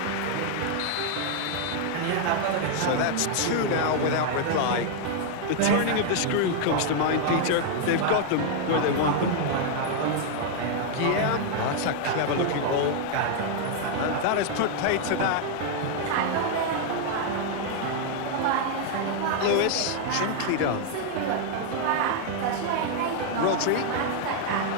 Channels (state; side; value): different; both; correlation 0.00